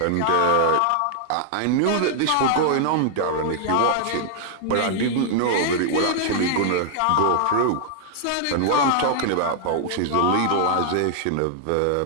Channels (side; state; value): both; different; correlation -0.01